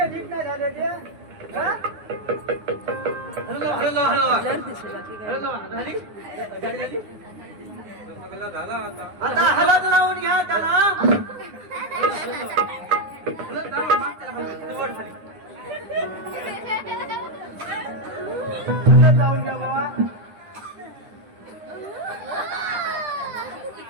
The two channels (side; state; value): left; late; 9.7 ms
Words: नीट नाही झालं ते? हा? हॅलो ब्लर दिसलं बाकी काय झाली गाडी झाली झाला आता. आता हलत लावून घ्या त्याला. हलत लावा, माग त्याला खाली. वर खाली. हलत लावून घ्या बाबा.